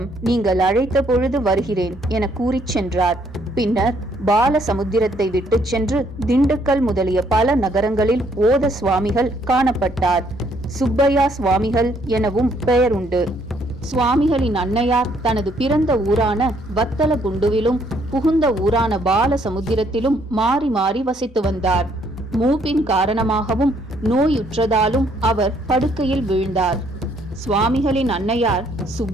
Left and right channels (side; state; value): both; normal; correlation 0.67